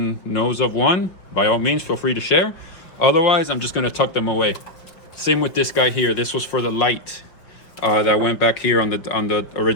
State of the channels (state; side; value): late; right; 5.8 ms